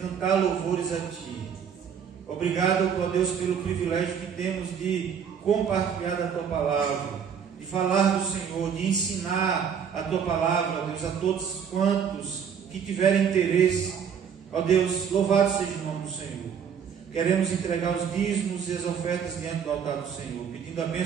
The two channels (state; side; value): quieter; left; 7.5 dB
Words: louvores a Ti. Obrigado, ó Deus, pelo privilégio que temos de compartilhar da Tua palavra, de falar do Senhor, de ensinar a Tua palavra, ó Deus, a todos quantos que tiverem interesse. Ó Deus, louvado seja o nome do Senhor. Queremos entregar os dízimos e as ofertas diante do altar do Senhor, pedindo a